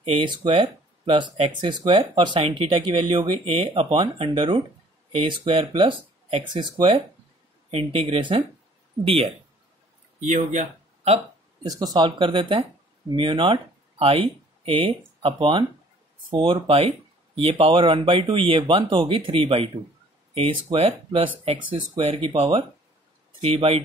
A square plus X square, और साइन थीटा की वैल्यू होगी A upon under root A square plus X square integration DL. ये हो गया। अब इसको सॉल्व कर देते हैं। Mu not I A upon 4 pi, ये पावर 1/2, ये 1 तो होगी 3/2 A square plus X square की पावर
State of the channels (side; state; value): both; normal; correlation 0.56